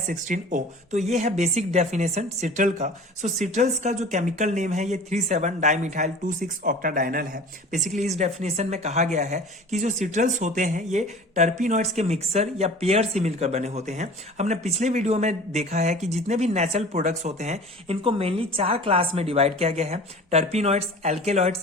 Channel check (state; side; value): normal; both; correlation 0.41